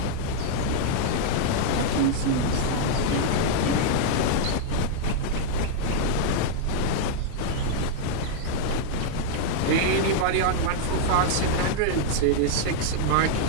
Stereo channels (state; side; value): different; both; correlation -0.01